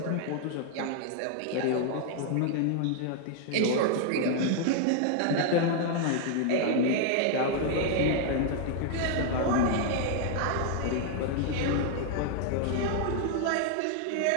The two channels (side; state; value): both; different; correlation 0.00